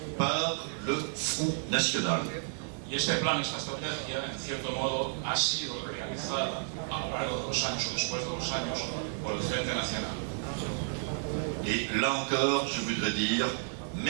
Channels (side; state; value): left; silent; 57 dB below the other